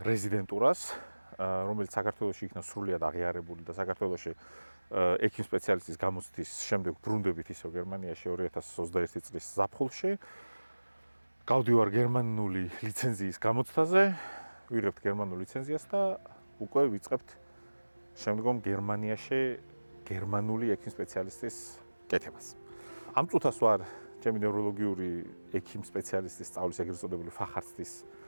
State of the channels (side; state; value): both; inverted; correlation -1.00